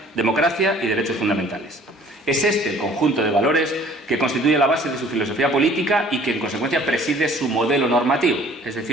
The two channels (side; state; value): both; normal; correlation 0.53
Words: democracia y derechos fundamentales. Es este el conjunto de valores que constituye la base de su filosofía política y que en consecuencia preside su modelo normativo, es